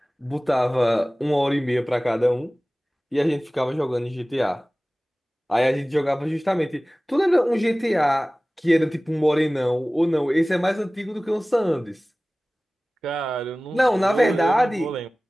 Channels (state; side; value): normal; both; correlation 0.98